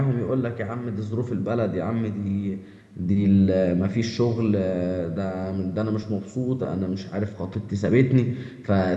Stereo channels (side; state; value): both; identical; correlation 1.00